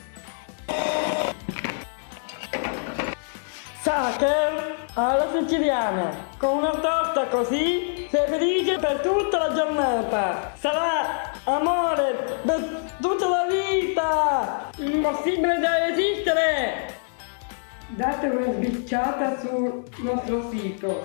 Sacher alla siciliana, con una torta così sei felice per tutta la giornata. Sarà amore per tutta la vita! Impossibile da resistere! Date una sbirciata sul nostro sito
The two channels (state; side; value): silent; right; digital silence